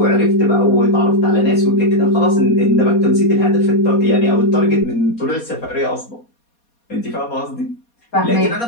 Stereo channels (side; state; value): right; late; 4.2 ms